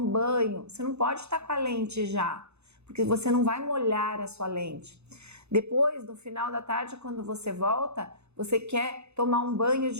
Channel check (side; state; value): left; late; 0.81 ms